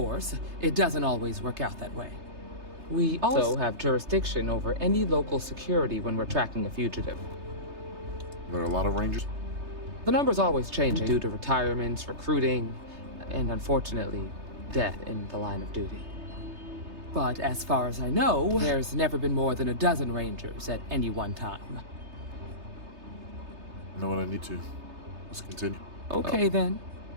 it doesn't always work out that way. We also have jurisdiction over any local security when we're tracking a fugitive. There are a lot of Rangers? The number's always changing due to retirements, recruiting, and unfortunately, death in the line of duty. But as far as I know, there's never been more than a dozen Rangers at any one time. I know what I need to. Let's continue. Okay then.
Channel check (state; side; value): late; left; 3.3 ms